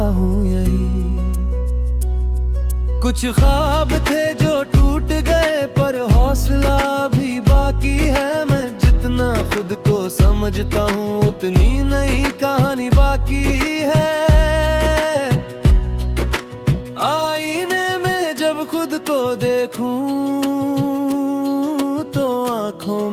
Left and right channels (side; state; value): both; identical; correlation 1.00